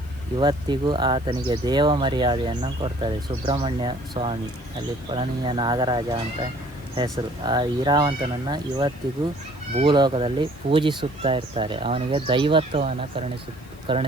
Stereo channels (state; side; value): noise; left; hiss, 27 dB below the sound